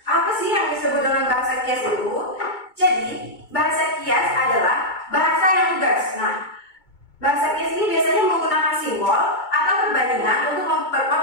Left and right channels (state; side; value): late; right; 2.2 ms